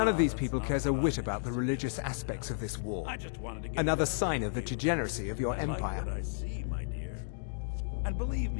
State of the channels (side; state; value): right; silent; digital silence